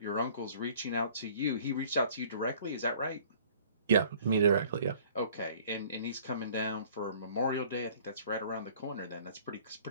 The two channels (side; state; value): both; inverted; correlation -0.53